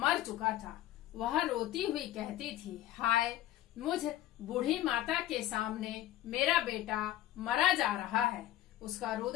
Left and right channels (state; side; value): quieter; right; 14.0 dB